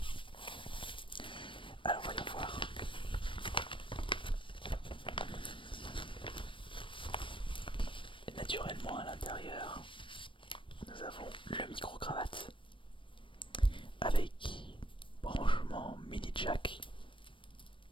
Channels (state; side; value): late; right; 0.25 ms